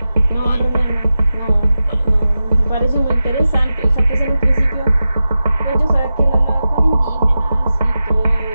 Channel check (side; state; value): both; inverted; correlation -0.92